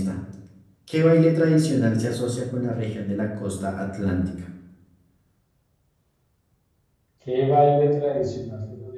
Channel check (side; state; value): both; identical; correlation 1.00